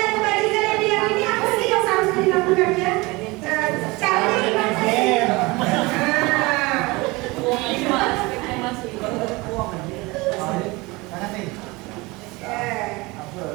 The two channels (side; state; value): left; quieter; 23.7 dB